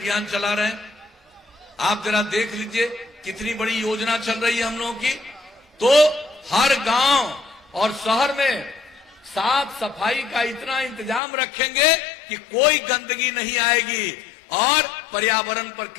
चला रहे हैं। आप जरा देख लीजिए कितनी बड़ी योजना चल रही है हम लोगों की। तो हर गांव और शहर में साफ सफाई का इतना इंतजाम रखेंगे कि कोई गंदगी नहीं आएगी और पर्यावरण पर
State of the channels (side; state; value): right; drops out; at 11.2 s